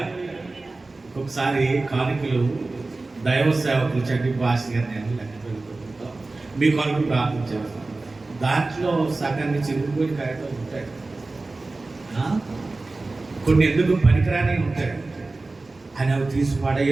ఒకసారి కానుకలు దైవ సేవకులు చండి భాష గారు నేను లెక్క పెట్టుకుంటాం, మీ కొరకు ప్రార్థన చేస్తాం. దాంట్లో సగాన్ని చిరుగుపోయి కాయలు ఉంటాయి, కొన్ని ఎందుకు పనికిరాని ఉంటాయి. అని అవి తీసి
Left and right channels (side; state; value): left; quieter; 3.3 dB